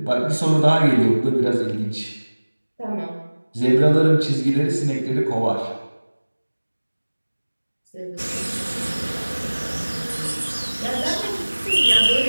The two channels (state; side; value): inverted; both; correlation -1.00